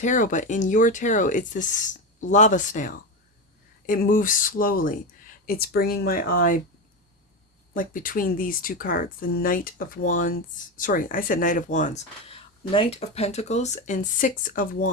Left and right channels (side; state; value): both; normal; correlation 0.16